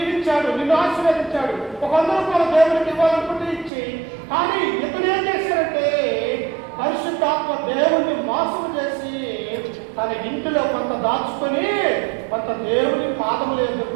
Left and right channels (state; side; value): drops out; left; at 3.7 s